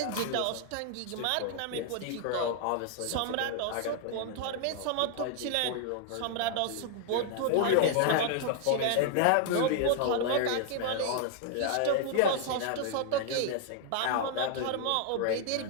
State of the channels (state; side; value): different; both; correlation 0.00